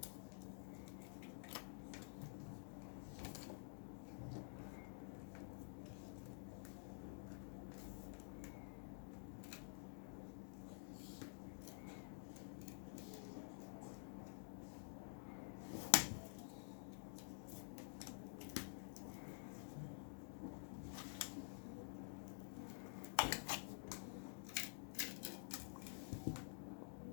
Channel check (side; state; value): right; silent; digital silence